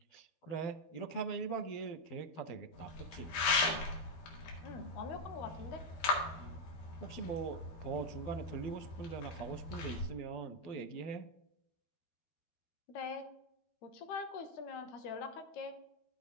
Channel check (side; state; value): right; late; 12 ms